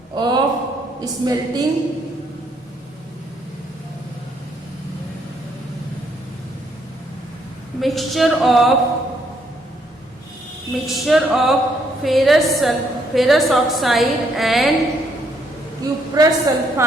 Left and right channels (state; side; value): normal; both; correlation 0.71